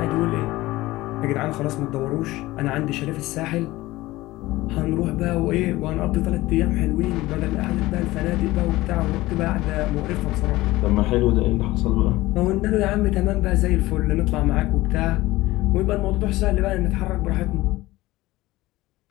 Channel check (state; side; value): quieter; right; 18.4 dB